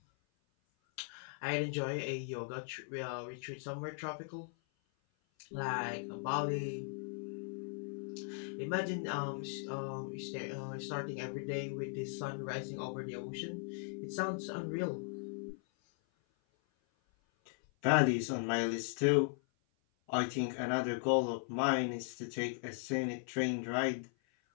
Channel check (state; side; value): silent; right; 52 dB below the other